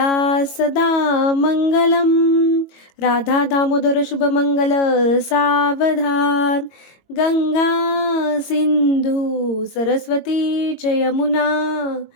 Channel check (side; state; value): right; late; 22 ms